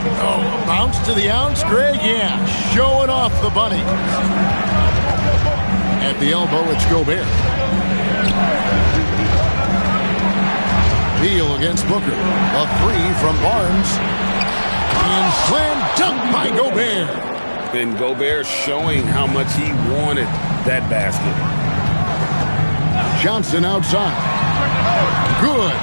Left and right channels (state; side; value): inverted; both; correlation -1.00